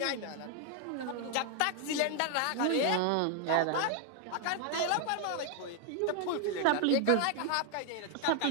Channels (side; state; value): both; different; correlation 0.00